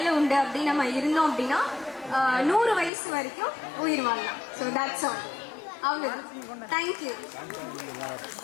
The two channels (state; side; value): drops out; right; at 2.9 s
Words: உண்டு அப்படின்னு நம்ம இருந்தோம் அப்படின்னா 100 வயசு வரைக்கும் உயிர் வாழலாம். So that's all. அவ்வளோதான். தேங்க்யூ.